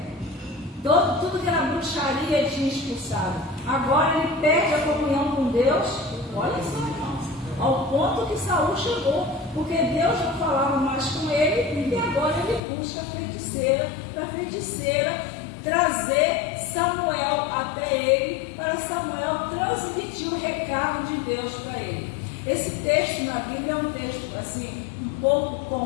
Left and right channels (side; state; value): right; drops out; at 12.6 s